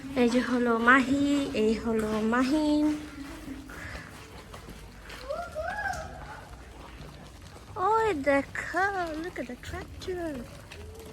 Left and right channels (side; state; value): both; identical; correlation 1.00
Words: এই যে হলো মাহি, এই হলো মাহিন। ওই দেখো, look at the tractor.